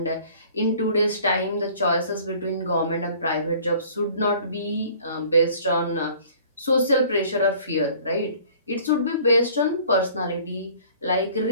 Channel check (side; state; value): both; inverted; correlation -0.51